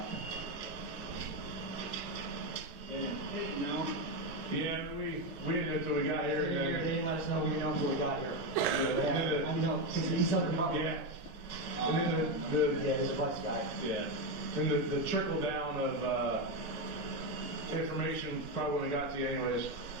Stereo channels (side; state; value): both; normal; correlation 0.10